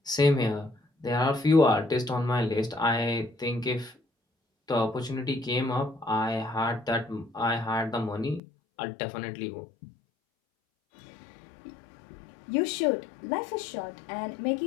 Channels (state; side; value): drops out; right; at 8.4 s